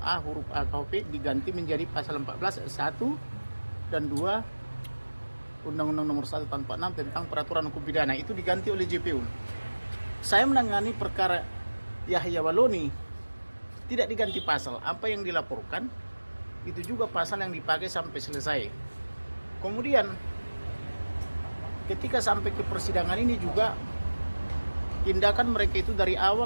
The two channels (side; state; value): both; inverted; correlation -1.00